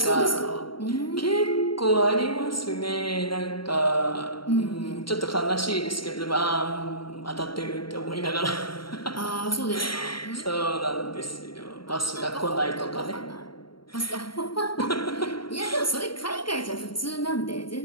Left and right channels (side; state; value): right; late; 0.73 ms